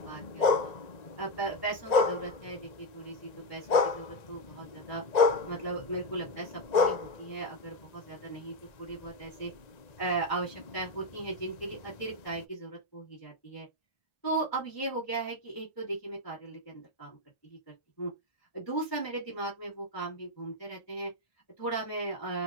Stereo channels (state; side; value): late; right; 1.9 ms